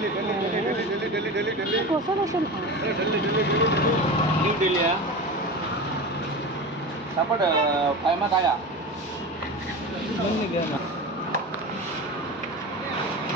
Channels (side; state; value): both; normal; correlation 0.28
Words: कसं कसं न्यू दिल्ली सापड फायमा काया